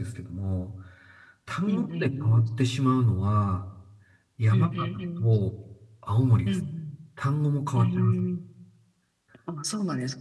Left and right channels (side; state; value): both; identical; correlation 1.00